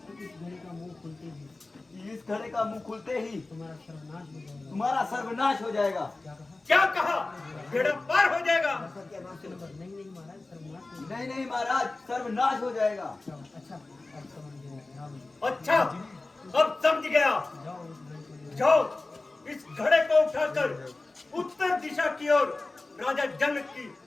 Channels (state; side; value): quieter; right; 3.2 dB